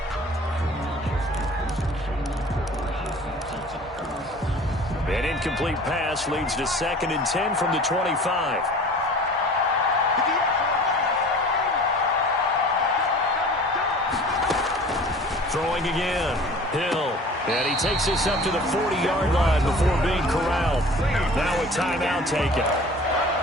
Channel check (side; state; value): both; normal; correlation 0.44